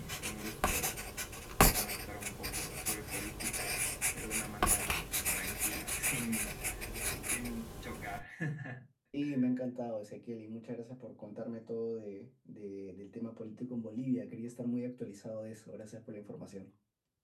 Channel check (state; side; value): identical; both; correlation 1.00